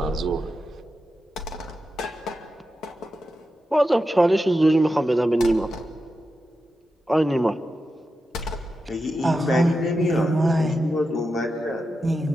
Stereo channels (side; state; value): both; normal; correlation 0.90